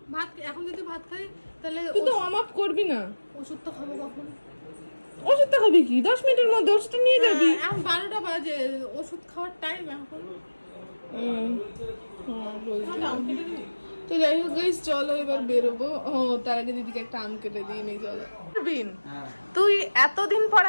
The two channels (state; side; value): inverted; both; correlation -1.00